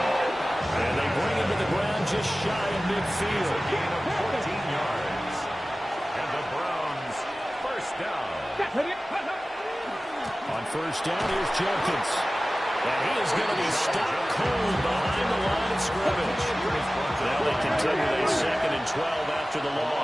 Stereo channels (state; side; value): normal; both; correlation 0.97